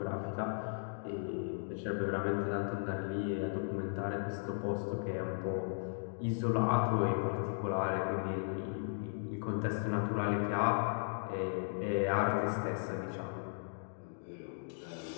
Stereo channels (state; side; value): silent; right; digital silence